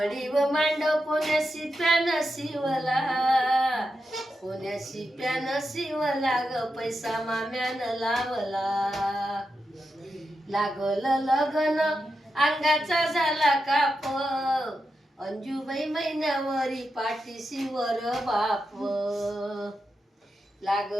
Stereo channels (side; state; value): both; normal; correlation 0.87